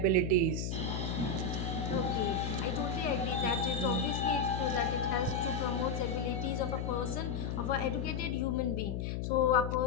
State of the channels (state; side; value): noise; left; hum, 2 dB below the sound